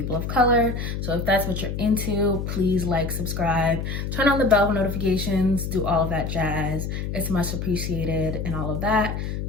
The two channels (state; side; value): noise; left; hum, 4 dB below the sound